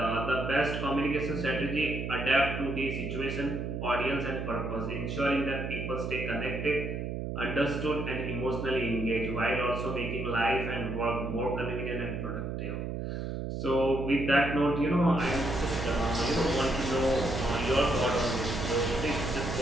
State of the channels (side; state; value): right; noise; hum, 4 dB below the sound